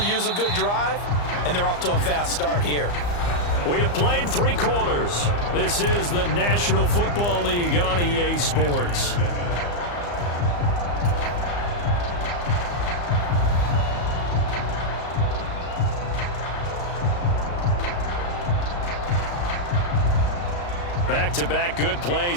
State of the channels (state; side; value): late; right; 34 ms